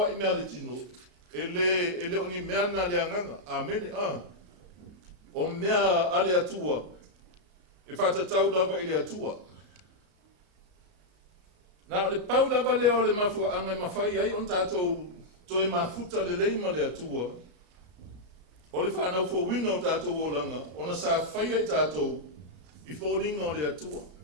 I mea le tino. E le oni mea na le anganga. Amen. O mea ale atua e whatatau lava I le atua. Na o le pau lava lea o le mafua anga mawhai ai on tātou toi mafuta le leima le atua. O le whanau fo wina o tātou o langa, ona sa whai ai tātou I fōlinga o le atua.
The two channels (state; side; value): late; left; 33 ms